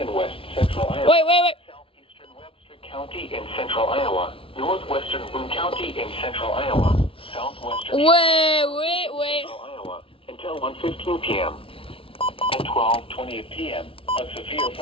west central Iowa. Wait. Southeastern Webster County in central Iowa. Northwestern Boone County in central Iowa. Southwestern Wait. central Iowa until 1:15 p.m. At 12:20 p.m., a severe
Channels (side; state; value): right; late; 0.26 ms